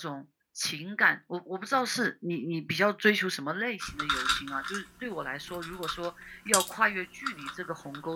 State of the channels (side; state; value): both; identical; correlation 1.00